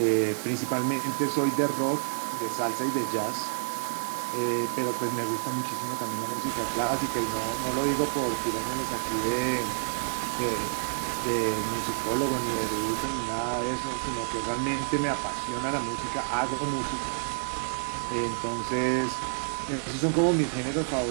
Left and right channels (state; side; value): silent; left; digital silence